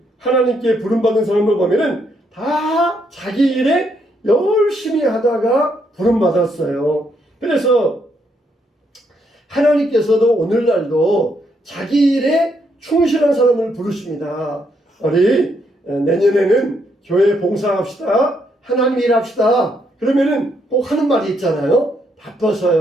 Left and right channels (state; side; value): normal; both; correlation 0.75